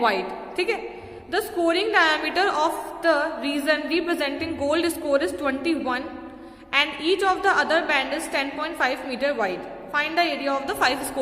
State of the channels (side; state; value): both; identical; correlation 1.00